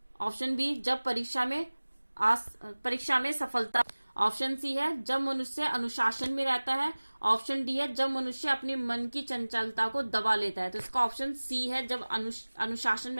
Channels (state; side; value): inverted; both; correlation -1.00